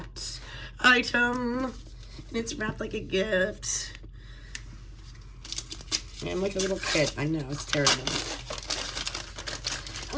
item. And it's wrapped like a gift. And like a little kid. I know, it's terrible.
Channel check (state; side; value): identical; both; correlation 1.00